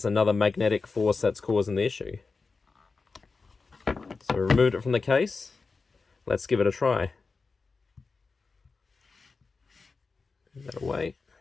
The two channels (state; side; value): quieter; right; 4.3 dB